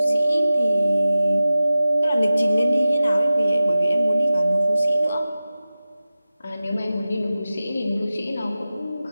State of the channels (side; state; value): both; inverted; correlation -0.95